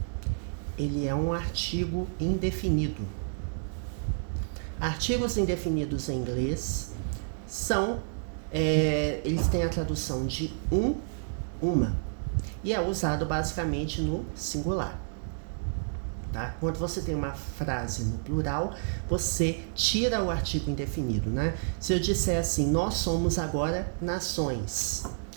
ele é um artigo indefinido. Artigos indefinidos em inglês são, eles têm a tradução de uma, e é usado basicamente no singular. Tá? Quando você tem uma frase no plural, você tira o artigo indefinido, né? Se eu disser assim, nós somos agora nações,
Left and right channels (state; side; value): silent; left; digital silence